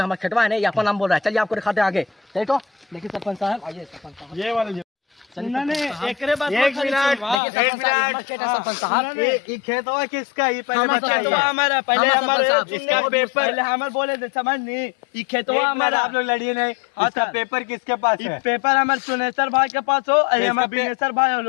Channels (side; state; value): right; drops out; at 7.4 s